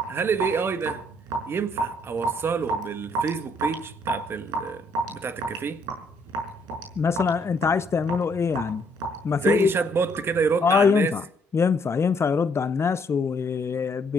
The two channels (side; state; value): both; normal; correlation 0.68